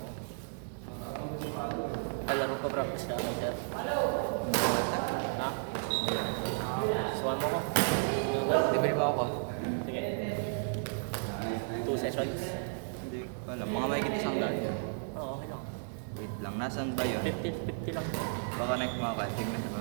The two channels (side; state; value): left; silent; digital silence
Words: Kalaro pa practice ka agad sir. Ha? Suwan mo ko. Libre mo ako. Sige. 2 sessions. Hindi ko alam. Mga may kita isang daan yun. Oo, okay lang. Wait lang. Nasaan ba yun? 50 lang. Baka connect mo ako. Tignan